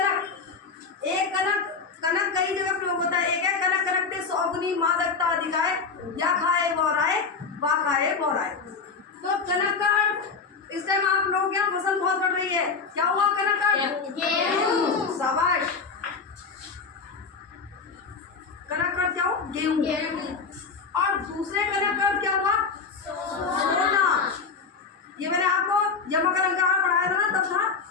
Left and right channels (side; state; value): right; quieter; 5.0 dB